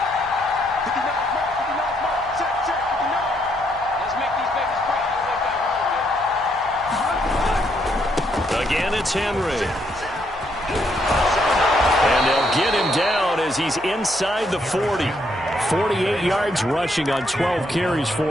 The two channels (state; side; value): noise; right; hum, 22 dB below the sound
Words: Again, it's Henry. And they'll get him down as as he's inside the 40. 48 yards rushing on 12 carries